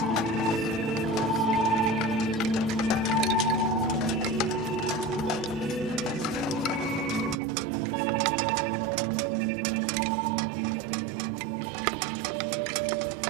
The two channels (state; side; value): drops out; left; at 7.4 s